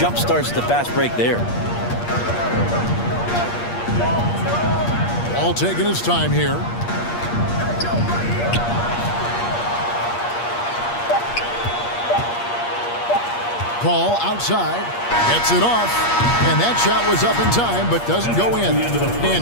starts the fast break there. All taking his time here. Paul outside, gets it off, and that shot was up in time but doesn't go in.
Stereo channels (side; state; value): right; late; 8.5 ms